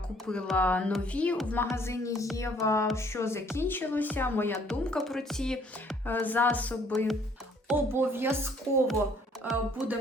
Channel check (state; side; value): normal; both; correlation 0.61